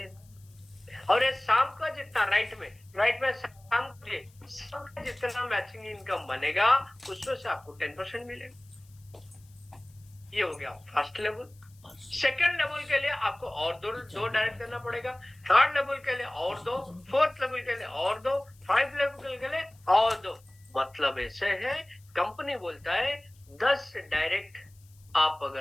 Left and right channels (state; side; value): noise; left; hiss, 29 dB below the sound